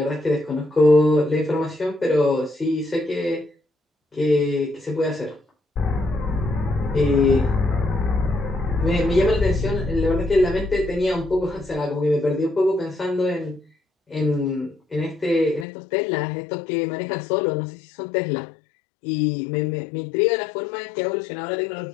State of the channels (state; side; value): drops out; right; at 15.7 s